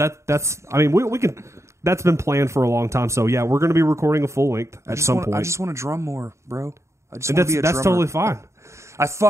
that's. I mean, we can. That's been planned for a long time. So yeah, we're going to be recording a full length at some point. I just want to drum more, bro. I just and want to be a that's drummer. totally fine. I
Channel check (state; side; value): late; left; 0.14 ms